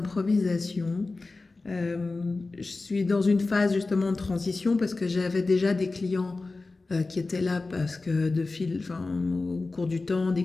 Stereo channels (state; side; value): quieter; right; 3.5 dB